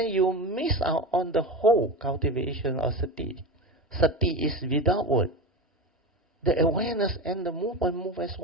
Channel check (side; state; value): both; normal; correlation 0.24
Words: you miss out on the whole cultivation of sati. Sati is without word. The awareness and the movement move as